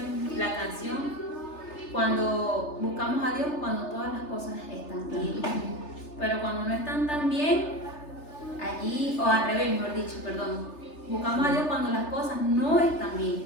la canción, cuando buscamos a Dios, cuando todas las cosas están bien. Pero cuando no están tan bien, allí, o al revés, mejor dicho, perdón, buscamos a Dios cuando las cosas no están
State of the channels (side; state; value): right; late; 3.3 ms